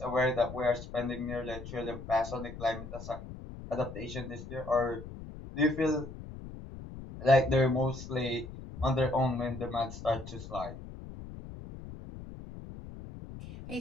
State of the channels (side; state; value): left; noise; rumble, 12 dB below the sound